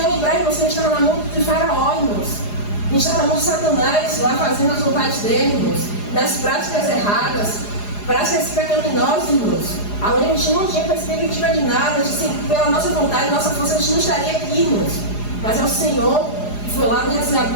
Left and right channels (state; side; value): late; right; 4.9 ms